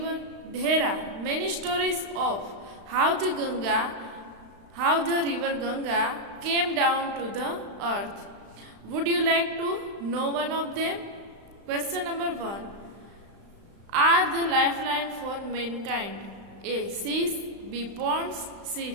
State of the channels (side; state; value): left; late; 35 ms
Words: There are many stories of how the river Ganga came down to the earth. Would you like to know one of them? Question number 1. Are the lifeline for mankind? A. Seas, B. Ponds, C.